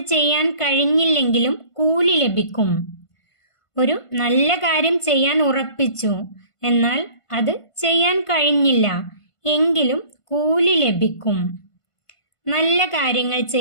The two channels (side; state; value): right; late; 1.5 ms